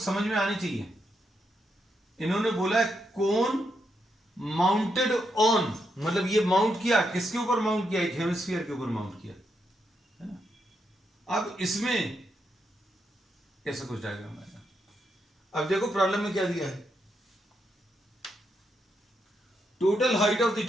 में आनी चाहिए। इन्होंने बोला है कोन माउंटेड ऑन, मतलब ये माउंट किया किसके ऊपर, माउंट किया एक हेमिस्फीयर के ऊपर माउंट किया, है ना। अब इसमें ऐसा कुछ डायग्राम आएगा। अब देखो प्रॉब्लम में क्या दिया है, total height of the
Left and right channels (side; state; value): both; normal; correlation 0.81